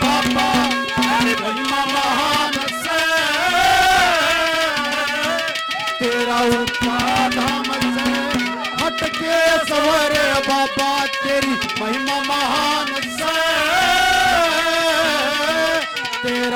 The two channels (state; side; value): identical; both; correlation 1.00